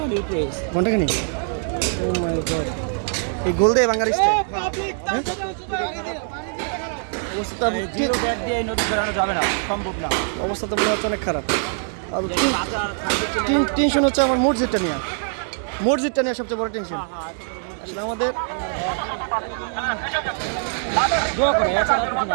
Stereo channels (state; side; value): silent; left; 64 dB below the other